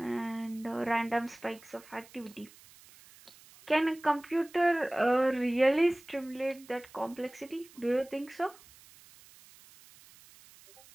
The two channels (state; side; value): noise; right; hiss, 23 dB below the sound